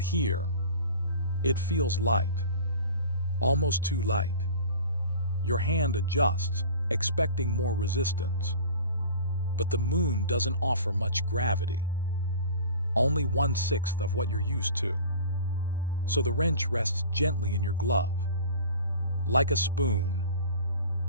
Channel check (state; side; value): inverted; both; correlation -0.42